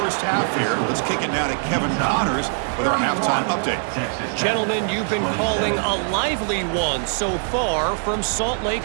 half here. Let's kick it now to Kevin Connors with our halftime update. Gentlemen, you've been calling a lively one so far from Salt Lake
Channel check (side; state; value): left; silent; 58 dB below the other